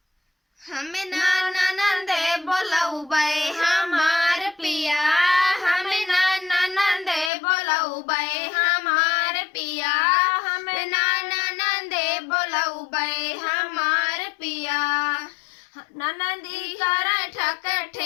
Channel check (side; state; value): right; drops out; at 7.3 s